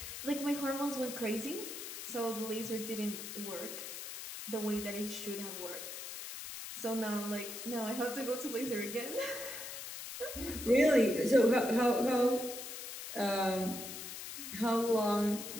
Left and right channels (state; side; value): noise; left; hiss, 8 dB below the sound